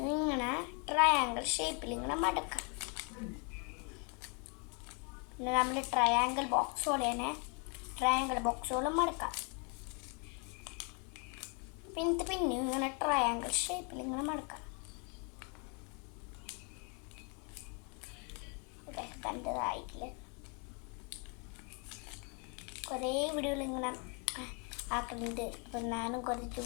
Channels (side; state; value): right; quieter; 35.9 dB